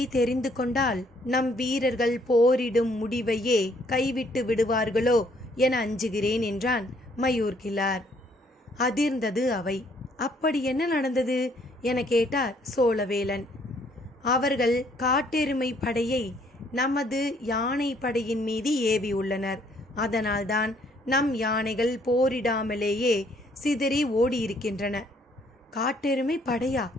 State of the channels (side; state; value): both; normal; correlation 0.65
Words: தெரிந்து கொண்டால் நம் வீரர்கள் போரிடும் முடிவையே கைவிட்டு விடுவார்களோ என அஞ்சுகிறேன் என்றான் மயூர் கிழார். அதிர்ந்தது அவை. அப்படி என்ன நடந்தது என கேட்டார் சோழவேலன். அவர்கள் காட்டெருமை படையை நமது யானை படையின் மீது ஏவியுள்ளனர். அதனால்தான் நம் யானைகள் போரிடாமலேயே சிதறி ஓடியிருக்கின்றன. காட்டெருமை படையா?